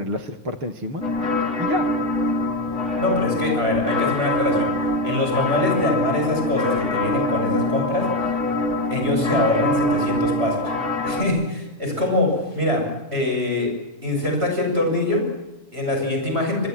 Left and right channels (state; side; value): late; left; 7.0 ms